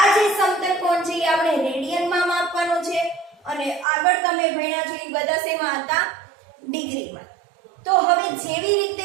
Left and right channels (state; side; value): drops out; left; at 3.9 s